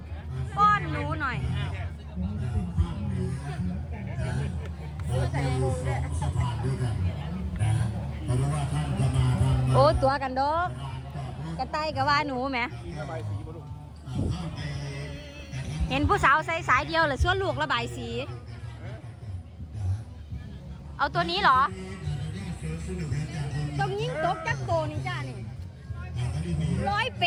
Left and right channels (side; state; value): both; identical; correlation 1.00